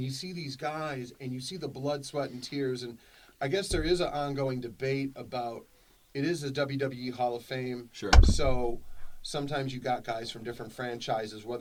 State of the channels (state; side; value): identical; both; correlation 1.00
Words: you see these guys, and you see the blood, sweat, and tears. And I guess there is an ongoing debate about, it is the WWE Hall of Fame. Sure. So sometimes you got guys from different franchises,